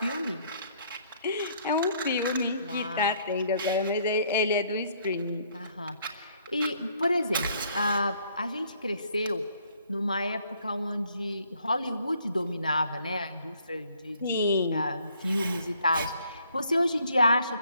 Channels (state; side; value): inverted; both; correlation -0.65